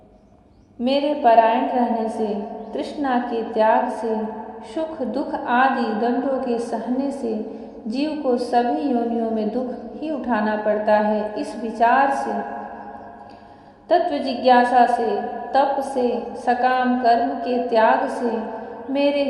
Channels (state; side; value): identical; both; correlation 1.00